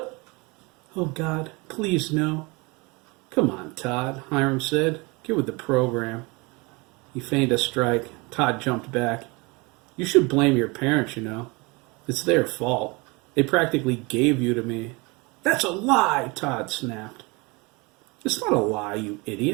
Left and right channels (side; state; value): left; quieter; 27.0 dB